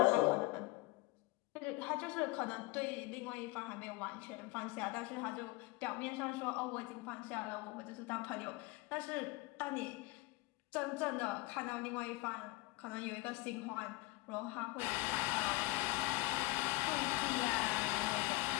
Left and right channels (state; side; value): quieter; right; 21.4 dB